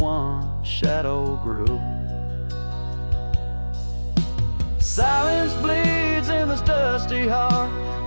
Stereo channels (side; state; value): both; inverted; correlation -1.00